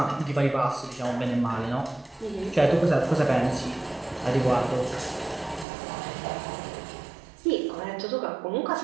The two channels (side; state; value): left; drops out; at 5.7 s